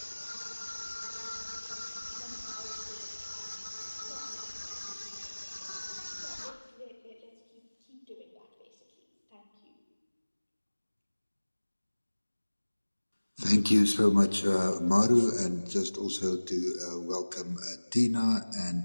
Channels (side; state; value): both; inverted; correlation -1.00